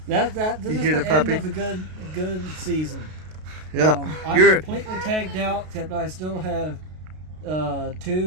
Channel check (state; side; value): late; left; 32 ms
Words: this You is hear the the end puppy? of a good season. Yeah, I'm you're completely tagged out, except I still have